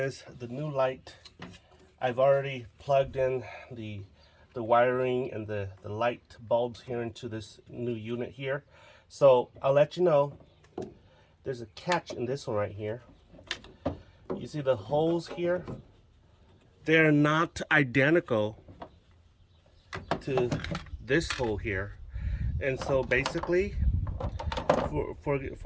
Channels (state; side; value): identical; both; correlation 1.00